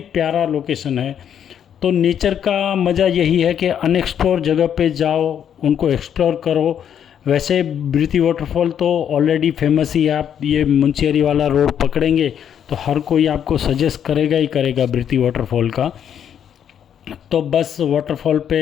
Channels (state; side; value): quieter; right; 9.0 dB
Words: लोकेशन है। तो नेचर का मज़ा यही है कि अनएक्सप्लोर जगह पे जाओ, उनको एक्सप्लोर करो। वैसे ब्रिथी वाटरफॉल तो ऑलरेडी फेमस ही है। आप ये मुंशियारी वाला रोड पकड़ेंगे तो हर कोई आपको सजेस्ट करेगा ही करेगा ब्रिथी वाटरफॉल का। तो बस वाटरफॉल पे